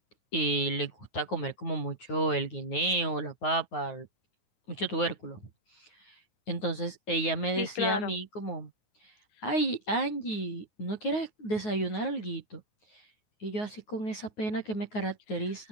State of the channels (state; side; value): late; right; 9.4 ms